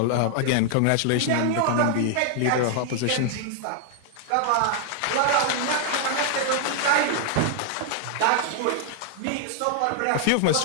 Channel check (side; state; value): both; different; correlation 0.00